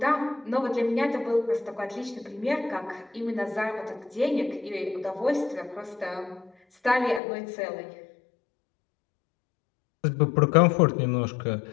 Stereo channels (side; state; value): right; drops out; at 7.2 s